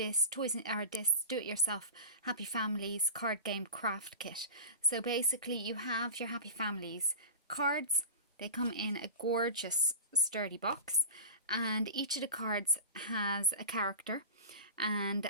this do-it-yourself Happy Families card game craft kit. So basically you have your Happy Families cards. They come in a gorgeous sturdy box, and each of the cards has a character, and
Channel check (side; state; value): both; inverted; correlation -0.31